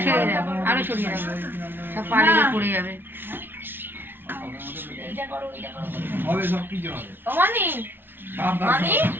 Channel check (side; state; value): left; late; 0.10 ms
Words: ছড়িয়ে দাও আরো ছড়িয়ে দাও সব পালিয়ে পড়ে যাবে হবে সব কিছু হবে অমানি সব মানি